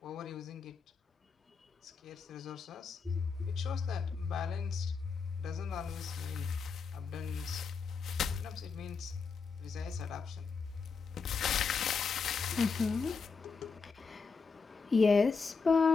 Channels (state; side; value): quieter; right; 5.1 dB